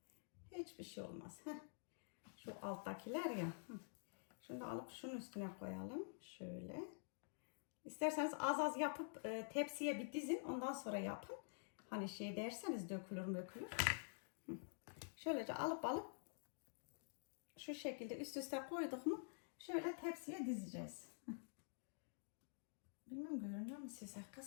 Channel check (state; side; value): silent; right; digital silence